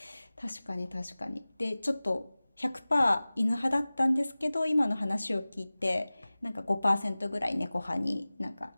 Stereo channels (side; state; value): both; inverted; correlation -0.98